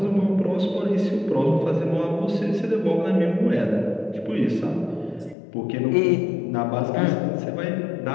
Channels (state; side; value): drops out; right; at 5.4 s